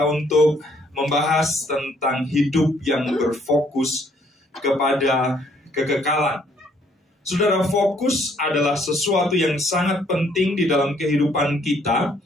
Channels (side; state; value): both; normal; correlation 0.65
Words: untuk membahas tentang hidup yang berfokus kepada kekekalan. Saudara, fokus adalah sesuatu yang sangat penting di dalam kehidupan kita.